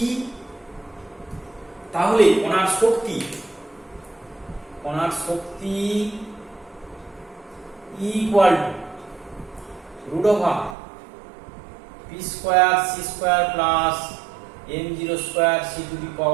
তাহলে কণার শক্তি equal to √p square c square plus m0 square c to the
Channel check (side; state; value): left; drops out; at 10.8 s